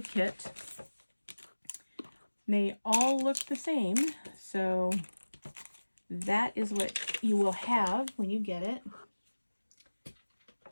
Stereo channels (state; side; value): inverted; both; correlation -1.00